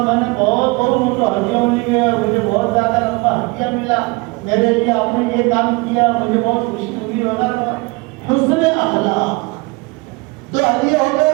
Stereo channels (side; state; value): left; quieter; 26.1 dB